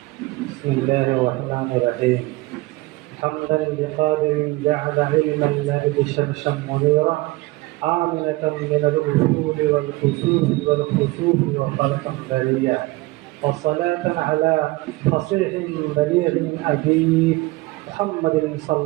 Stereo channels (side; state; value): left; quieter; 21.4 dB